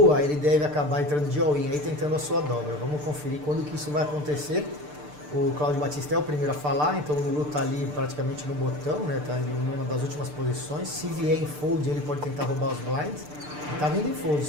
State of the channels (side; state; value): left; late; 6.7 ms